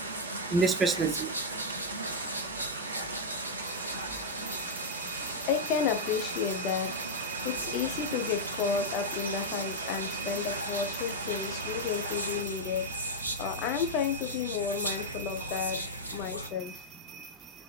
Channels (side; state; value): both; normal; correlation -0.03